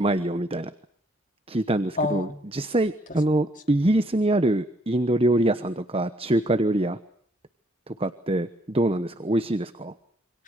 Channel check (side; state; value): both; normal; correlation 0.68